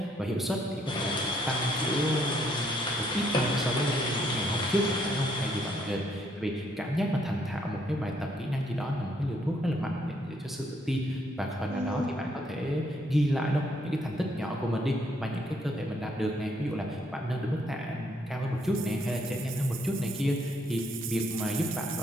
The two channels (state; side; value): normal; both; correlation 0.70